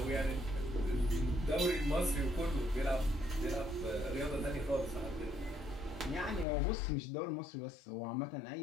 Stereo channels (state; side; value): drops out; right; at 6.5 s